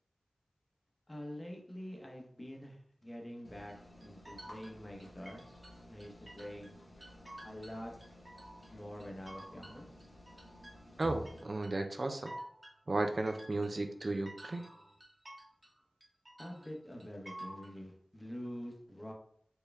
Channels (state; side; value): normal; both; correlation 0.98